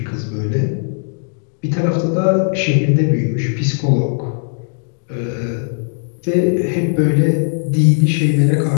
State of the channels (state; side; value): silent; right; digital silence